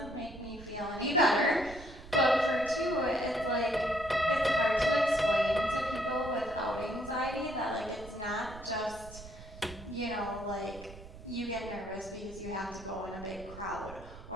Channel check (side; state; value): right; noise; rumble, 16 dB below the sound